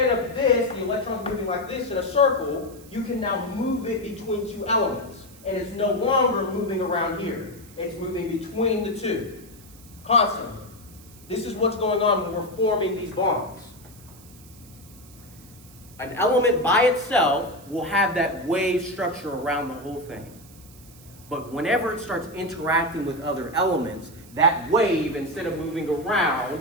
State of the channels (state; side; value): noise; right; hiss, 23 dB below the sound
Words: of this, the electrons moving like this in a circle, you can now move it between two elements. And it's no longer moving around here. It's moving between the two, constantly. This is what's going on when we're forming these bonds. An element by itself will have that wave structure around the whole thing. But whenever it starts interacting with other elements, that wave, instead of moving around,